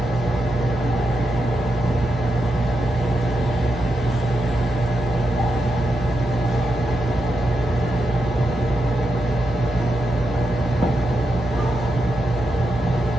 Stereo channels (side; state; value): both; normal; correlation 0.86